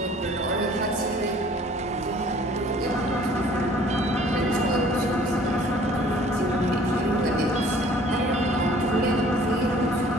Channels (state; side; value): normal; both; correlation 0.54